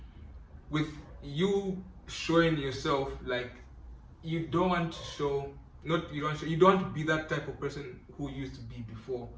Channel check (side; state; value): both; identical; correlation 1.00